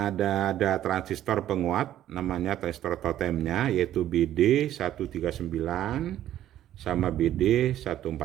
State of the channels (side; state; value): left; quieter; 12.2 dB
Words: ada transistor penguat namanya transistor totemnya, yaitu BD139 sama